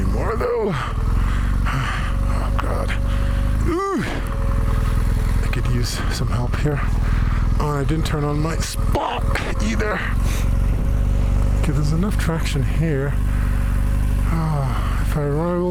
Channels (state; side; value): identical; both; correlation 1.00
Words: though. Oh, God. Ooh. I could use some help here. Oh, and I didn't turn on my spot either. Okay, there's enough traction here. Oh, if I